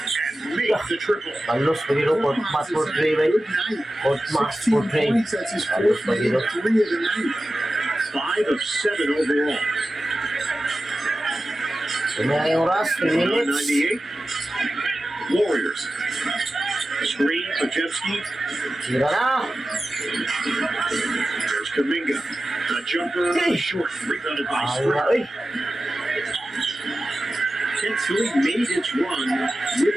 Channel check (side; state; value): both; normal; correlation 0.94